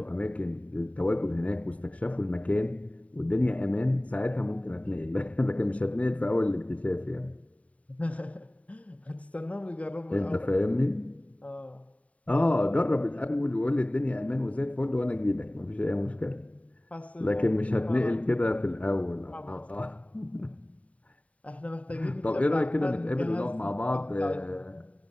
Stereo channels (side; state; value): right; late; 0.067 ms